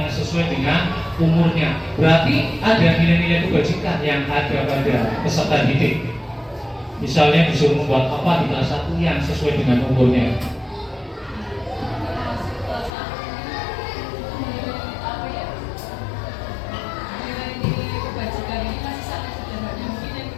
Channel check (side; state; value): right; drops out; at 12.9 s